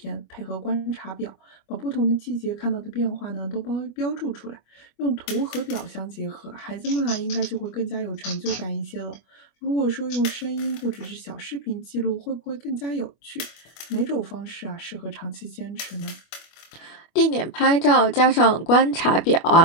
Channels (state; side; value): late; right; 25 ms